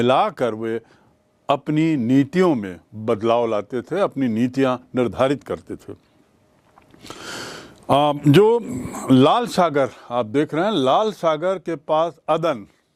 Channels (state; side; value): identical; both; correlation 1.00